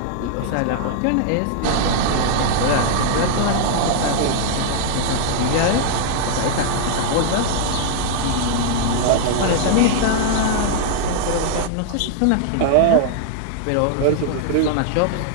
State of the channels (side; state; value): both; different; correlation -0.01